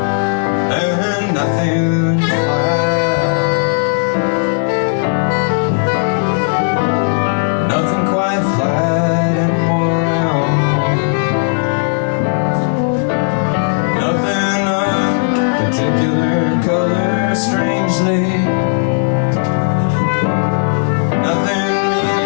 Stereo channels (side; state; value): right; silent; digital silence